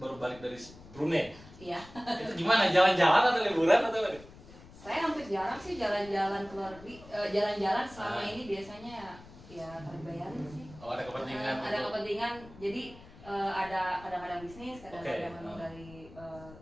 baru balik dari Brunei. Iya. Itu gimana? Jalan-jalan atau liburan atau apa? Saya hampir jarang sih jalan-jalan keluar negeri. Jalan-jalan selama ini biasanya ya terbayarin sih. Oh ada kepentingan? Ada kepentingan. Jadi ada kadang-kadang bisnis, kadang-kadang memang dari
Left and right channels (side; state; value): left; noise; rumble, 19 dB below the sound